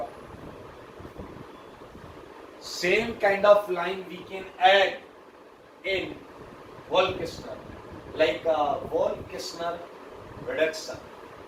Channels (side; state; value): both; identical; correlation 1.00